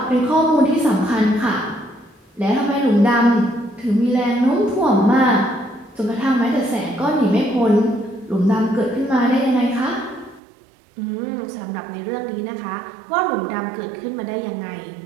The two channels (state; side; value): drops out; left; at 10.4 s